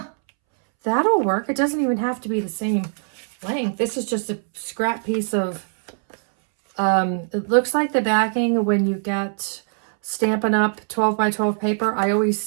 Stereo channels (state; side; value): silent; left; 64 dB below the other